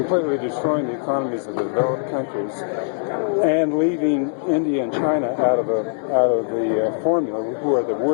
destroying the economies of the developed countries and leaving India and China out of the formula, who are the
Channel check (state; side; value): silent; right; 65 dB below the other